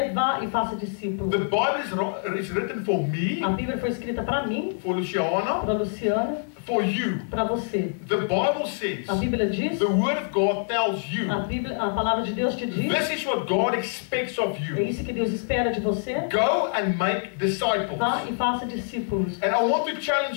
vá e faça discípulos. The Bible is written for me, A Bíblia foi escrita para mim, for Luciana, para Luciana, for you. para você. The Bible says, A Bíblia diz, the Word of God tells you, a palavra de Deus te diz, this is what God expects of é you. isso que Deus espera de você. Go and make disciples. Vá e faça discípulos. And I want to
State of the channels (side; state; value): right; silent; digital silence